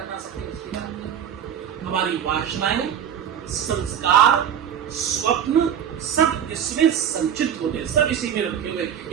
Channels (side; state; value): left; quieter; 9.1 dB